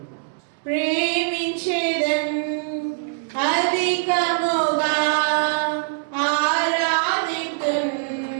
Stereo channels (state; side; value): silent; left; 64 dB below the other